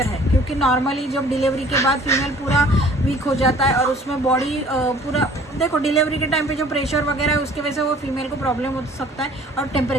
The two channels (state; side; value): normal; both; correlation 0.52